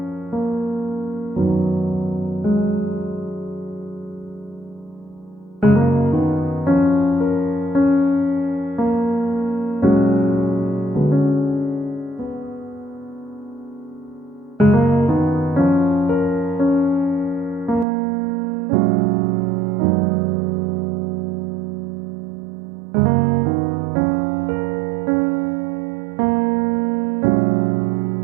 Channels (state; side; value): drops out; left; at 17.9 s